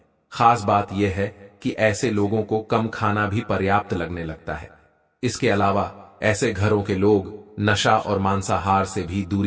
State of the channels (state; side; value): identical; both; correlation 1.00